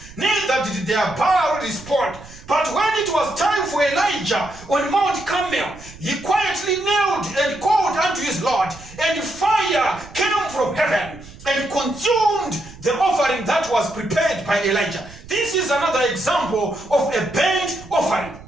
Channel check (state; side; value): noise; right; rumble, 19 dB below the sound